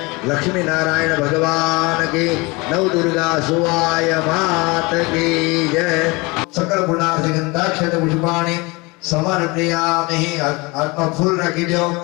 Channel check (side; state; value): right; quieter; 25.6 dB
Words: लक्ष्मी नारायण भगवान की नव दुर्गा सुवाय मात की जय सकल गुणार्थ गंधाक्षत पुष्पाणि समर्पयामि। आत्मा फूल रखी दो